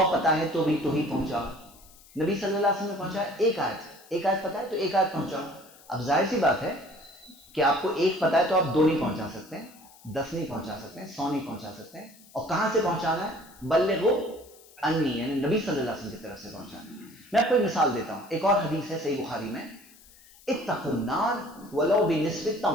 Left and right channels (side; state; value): left; noise; hiss, 24 dB below the sound